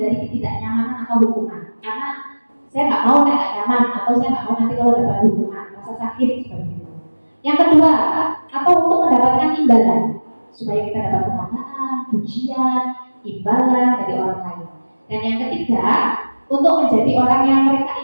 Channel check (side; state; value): both; inverted; correlation -1.00